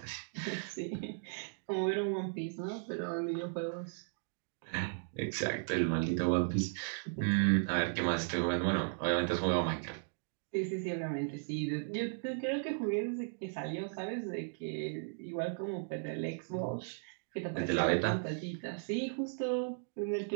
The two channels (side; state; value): left; silent; digital silence